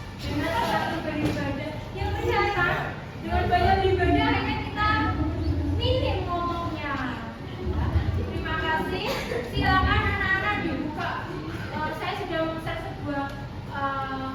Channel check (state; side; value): identical; both; correlation 1.00